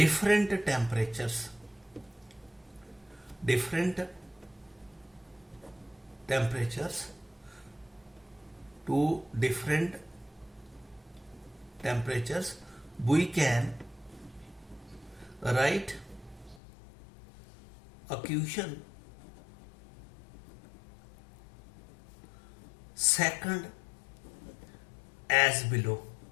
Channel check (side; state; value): right; drops out; at 16.6 s